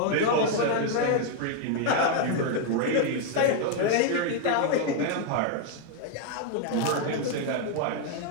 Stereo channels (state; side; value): different; both; correlation 0.00